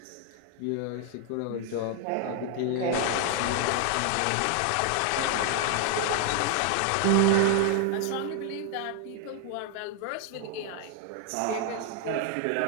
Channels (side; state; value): both; different; correlation 0.00